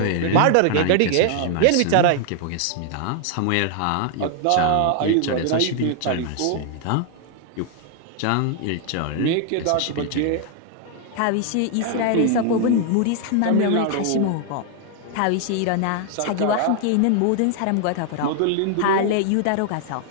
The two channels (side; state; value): both; different; correlation 0.00